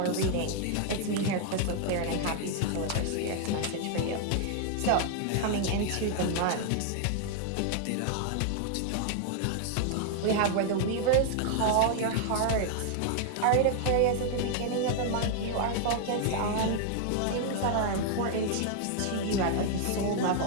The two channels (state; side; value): different; both; correlation 0.00